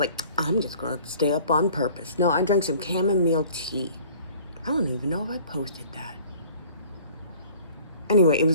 I'm just going to stay up on purpose. No, I drank some chamomile tea. I don't even know if I posted that. Anyway, it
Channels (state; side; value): inverted; both; correlation -0.50